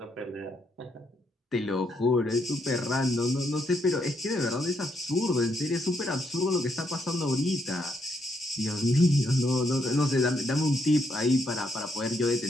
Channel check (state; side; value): normal; both; correlation 0.76